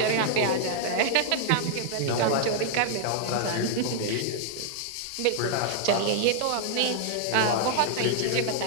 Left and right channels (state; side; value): different; both; correlation -0.01